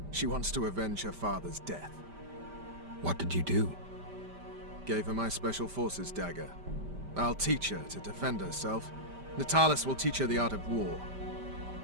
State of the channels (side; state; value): left; late; 5.1 ms